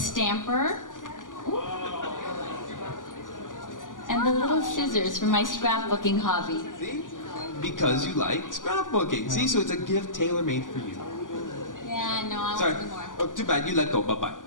And the little scissors for my scrapbooking hobby. See? Because you like scrapbooking. See, so it's a gift tailor-made for you. Yeah, no, I Sorry. want to do more. Oh, too bad. You let go. Bye-bye.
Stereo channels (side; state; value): right; late; 0.88 ms